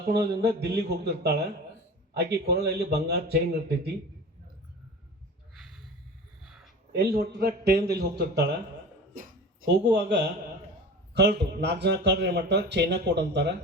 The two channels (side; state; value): both; normal; correlation 0.35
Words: ದಿಲ್ಲಿಗೆ ಹೋಗ್ತಿರ್ತಾಳೆ. ಆಕೆ ಕೊರಳಲ್ಲಿ ಬಂಗಾರ ಚೈನ್ ಇರ್ತೈತಿ. ಎಲ್ಲಿ ಹೊಟ್ಟಿದ್ರೆ ಟ್ರೈನ್ದಲ್ಲಿ ಹೋಗ್ತಿರ್ತಾಳೆ. ಹೋಗುವಾಗ ಕಳ್ಳರು 4 ಜನ ಕಳ್ಳರು ಏನು ಮಾಡ್ತಾರೆ, ಚೈನಾ ಕೊಡು ಅಂತಾರೆ,